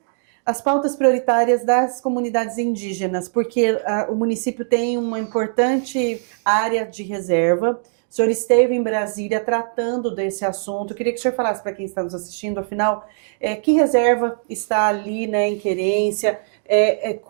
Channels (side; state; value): left; silent; digital silence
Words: as pautas prioritárias das comunidades indígenas, porque o município tem uma importante área de reserva. O senhor esteve em Brasília tratando desse assunto. Eu queria que o senhor falasse para quem está nos assistindo, afinal, que reserva está ali, né, em Querência,